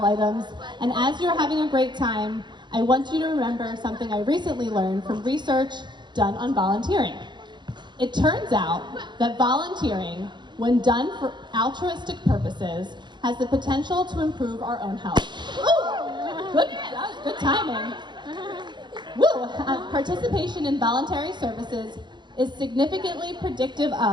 items. And as you're having a great time, I want you to remember something I recently learned from research done on volunteering. It turns out that volunteering, when done for altruistic purposes, has the potential to improve our own health. Ooh, that was good timing. Woo! Participation in voluntary services is significantly predictive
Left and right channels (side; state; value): left; late; 0.22 ms